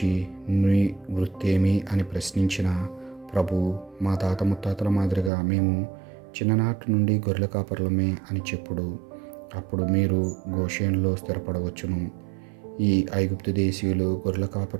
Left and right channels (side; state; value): left; drops out; at 5.3 s